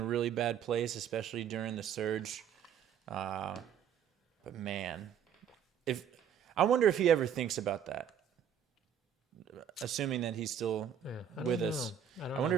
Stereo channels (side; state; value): left; quieter; 8.6 dB